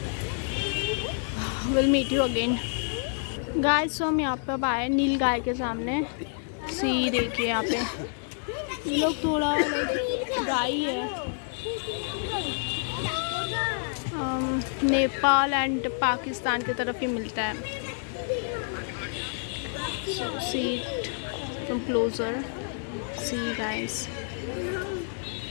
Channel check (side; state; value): right; silent; digital silence